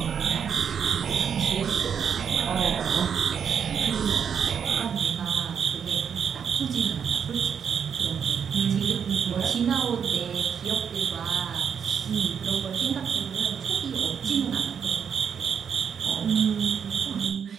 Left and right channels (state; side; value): quieter; left; 7.4 dB